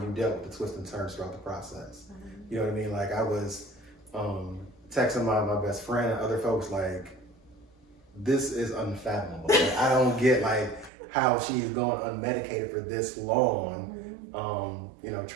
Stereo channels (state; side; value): drops out; left; at 10.9 s